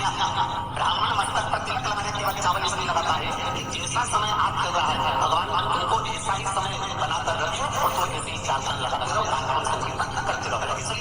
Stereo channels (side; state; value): both; identical; correlation 1.00